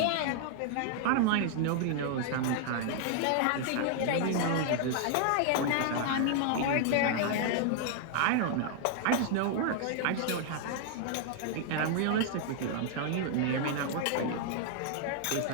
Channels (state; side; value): different; both; correlation 0.00